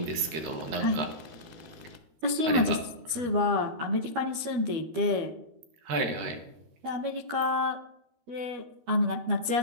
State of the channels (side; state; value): left; late; 12 ms